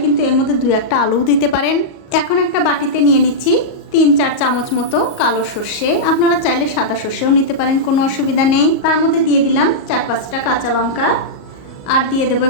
কিন্তু এর মধ্যে 2-1টা আলুও দিতে পারেন। এখন একটা বাটিতে নিয়ে নিচ্ছি 3-4 চামচ মতো কালো সর্ষে। আপনারা চাইলে সাদা সর্ষেও নিতে পারেন, কোনো অসুবিধা নেই। তার মধ্যে দিয়ে দিলাম 4-5টা কাঁচা লঙ্কা, আর দিয়ে দেবো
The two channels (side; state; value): right; late; 38 ms